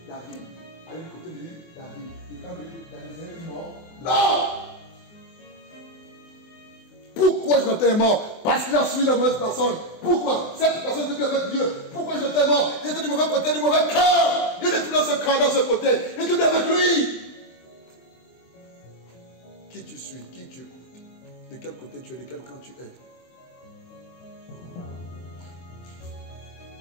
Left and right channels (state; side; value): late; right; 24 ms